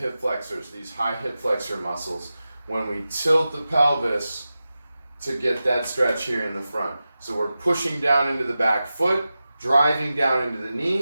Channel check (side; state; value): both; inverted; correlation -0.93